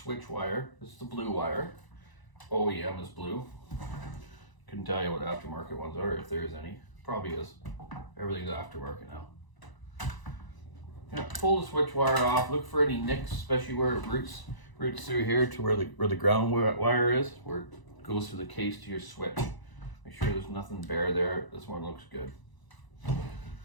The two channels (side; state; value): right; late; 1.0 ms